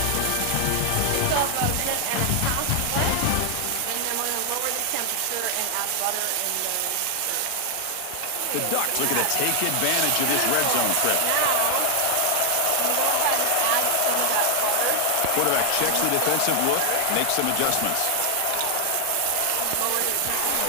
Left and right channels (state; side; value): different; both; correlation 0.00